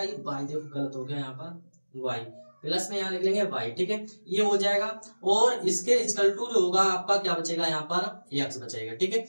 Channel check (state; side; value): inverted; both; correlation -1.00